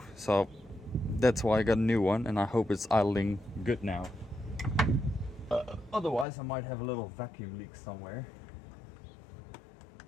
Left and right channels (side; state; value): right; drops out; at 6.2 s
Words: so that's why I got a new one, and I hope it's idling good now. Otherwise I might have a little vacuum leak somewhere.